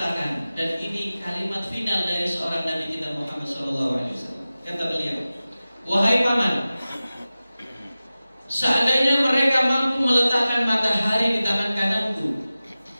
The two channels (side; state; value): both; inverted; correlation -0.96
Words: dan ini kalimat final dari seorang Nabi kita Muhammad Sallallahu Alaihi Wasallam. Kata beliau, wahai paman, seandainya mereka mampu meletakkan matahari di tangan kananku,